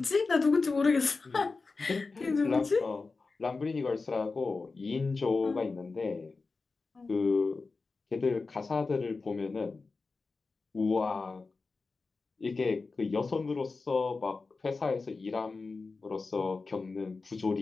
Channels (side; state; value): right; quieter; 4.1 dB